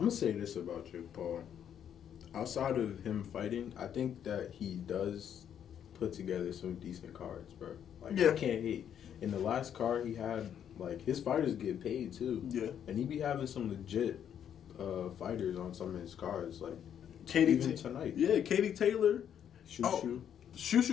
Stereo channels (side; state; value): right; quieter; 9.2 dB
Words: going to say this about Jake Paul. Outside of him fighting, I think that he does put together some decent cards, bro. Like, I can't hate. In the last card he had, like, his fighters get paid, too. Yeah. And he be having some legit fighters on some of his cards, like, Katie tonight. Yeah, Katie Taylor. Shushu,